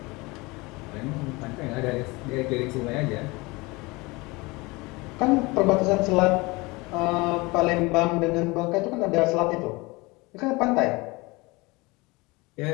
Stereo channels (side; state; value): right; quieter; 24.1 dB